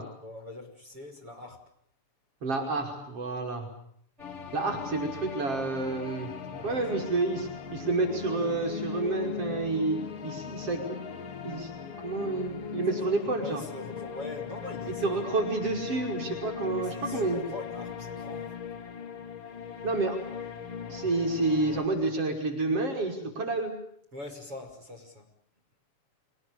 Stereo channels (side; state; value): left; late; 7.1 ms